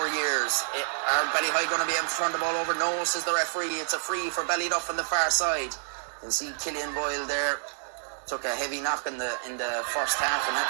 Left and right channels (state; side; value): silent; left; digital silence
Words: years. Are Ballyheigue going to be able to turn the ball over? No, says the referee. It's a free for Ballyduff on the far side. You can see Killian Boyle there. Took a heavy knock in the first half and had